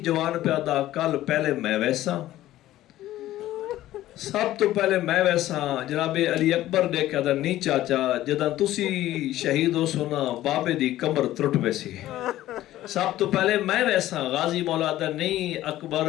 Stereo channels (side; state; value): right; quieter; 14.5 dB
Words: جوان پہ آدھا کل پہلے میں ویسا، سب تو پہلے میں ویسا. جناب علی اکبر دے کے آدھا نہیں چاچا جدہ تسی شہید ہو سونا بابے دی کمر ترٹ ویسی، سب تو پہلے میں ویسا. غازی مولا آدھا نہیں اکبر